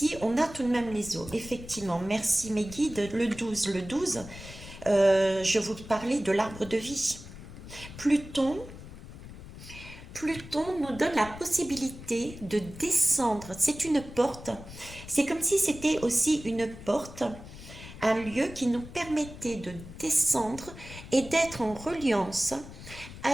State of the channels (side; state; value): left; noise; rumble, 14 dB below the sound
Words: on a tout de même les eaux. Effectivement, merci mes guides, le 12. Le 12, je vous parlais de l'arbre de vie. Pluton nous donne la possibilité de descendre. C'est une porte. C'est comme si c'était aussi une porte, un lieu qui nous permettait de descendre et d'être en reliance